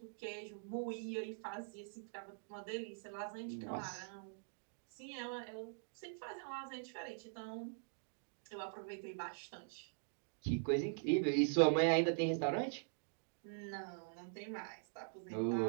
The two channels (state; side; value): silent; left; digital silence